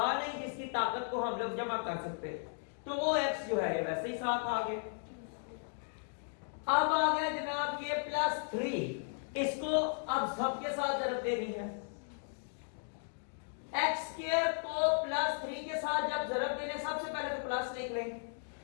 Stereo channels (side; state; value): right; silent; digital silence